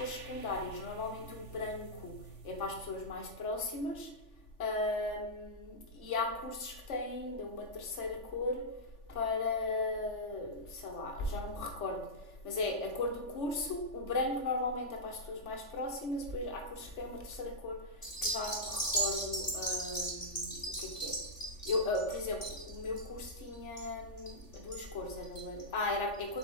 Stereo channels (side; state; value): right; late; 3.4 ms